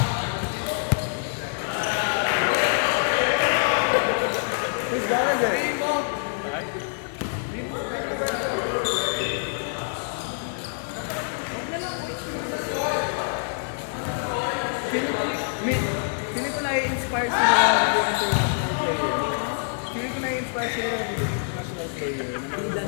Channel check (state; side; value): silent; right; digital silence